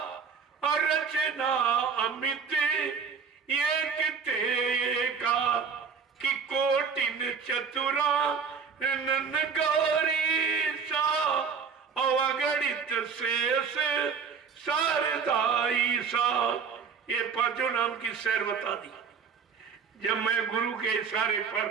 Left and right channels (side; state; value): left; quieter; 6.0 dB